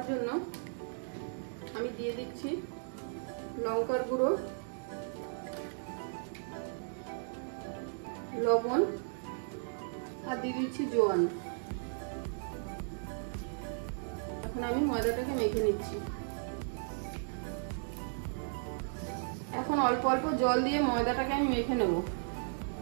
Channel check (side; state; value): left; silent; digital silence